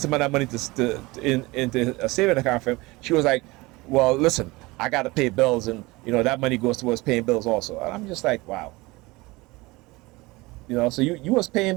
of that money into a saving account for him. She was like, well, listen, I got to pay bills, and that money goes towards paying bills also. And I'm just like, wow. So you was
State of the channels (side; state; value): left; quieter; 22.2 dB